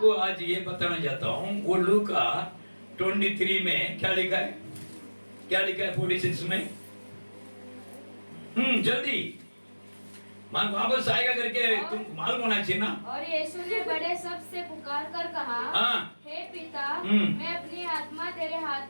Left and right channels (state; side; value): inverted; both; correlation -1.00